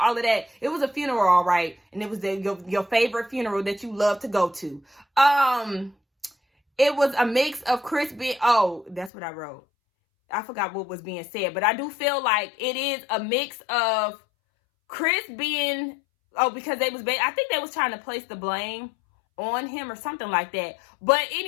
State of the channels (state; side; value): drops out; right; at 9.1 s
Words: all of that. It was a funeral, all right. And it was your favorite funeral that you love to go to. It was a mix of Chris being... Oh, that's what I wrote. I forgot what was being said. But I do feel like it is a mix of Chris being... Oh, because they was... I think they was trying to place the blame on him or something like that. But